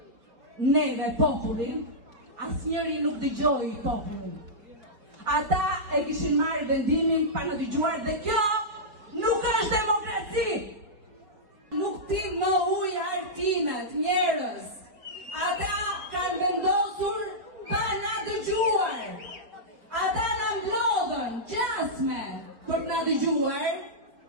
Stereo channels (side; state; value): left; late; 4.7 ms